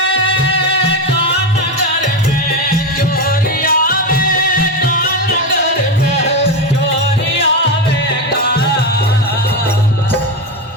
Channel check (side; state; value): both; normal; correlation 0.14